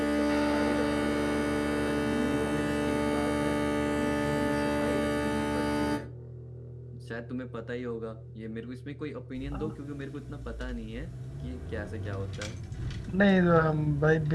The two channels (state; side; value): identical; both; correlation 1.00